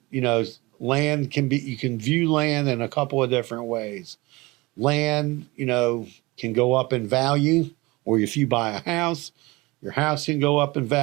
land you can view land in a couple of different ways. Land, can go up in value, or if you buy a house, your house can go up in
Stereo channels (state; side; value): quieter; left; 22.8 dB